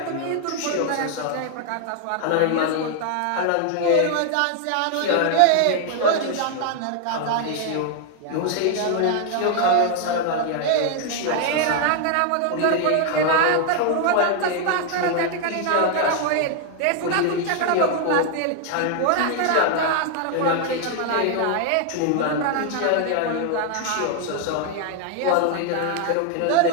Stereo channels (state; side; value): different; both; correlation 0.00